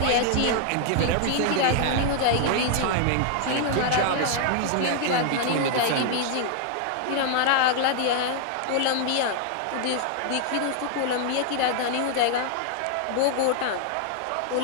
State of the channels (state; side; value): different; both; correlation 0.00